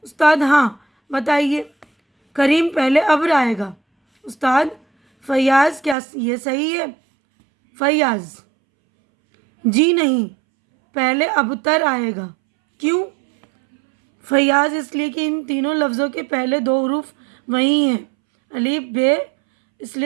استاد: ہاں بتائیے. کریم: پہلے ابر آئے گا. استاد: فیاض: کیا یہ صحیح ہے؟ فیاض: جی نہیں, پہلے ابتر آئے گا. کیوں؟ فیاض: اس لیے کہ ان تینوں لفظوں کے پہلے دو حروف وہی ہیں, الف بے, اس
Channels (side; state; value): left; drops out; at 6.0 s